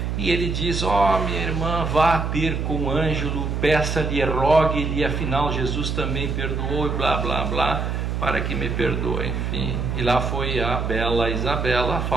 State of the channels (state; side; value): noise; right; hum, 2 dB below the sound